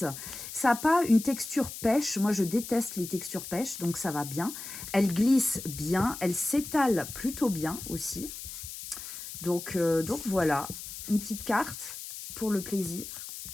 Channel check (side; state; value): left; noise; hiss, 10 dB below the sound